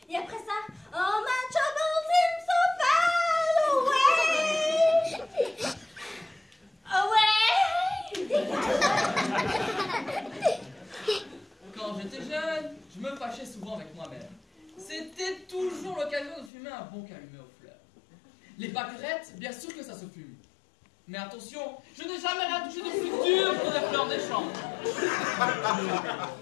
Et après ça, oh my trouble seems so far away! Dégage! Quand j'étais jeune, je me fâchais souvent avec moi-même. C'était toujours l'occasion de fumer un bon calumet aux fleurs. Les pâquerettes, bien sûr que ça se fume. Mais attention, je n'ai jamais rien touché de plus dur que des fleurs des champs.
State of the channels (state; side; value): drops out; right; at 16.5 s